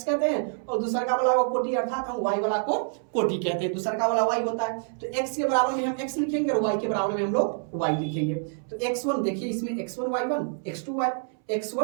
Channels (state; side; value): silent; left; 60 dB below the other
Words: कहते हैं, और दूसरा का वाला को कोटि अर्थात हम y वाला को कोटि कहते हैं, दूसरा का वाला y होता है। तो x के बराबर में हम x लिखेंगे और y के बराबर में हम लोग y लिखेंगे। तो x1 देखिए इसमें x1 y1